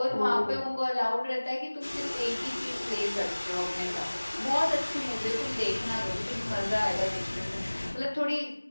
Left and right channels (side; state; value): both; inverted; correlation -1.00